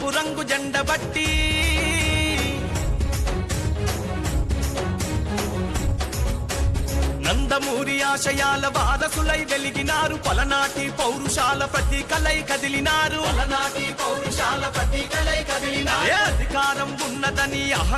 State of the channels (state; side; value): identical; both; correlation 1.00